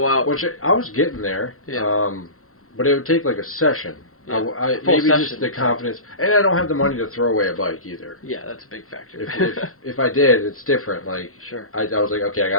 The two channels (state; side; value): late; right; 0.63 ms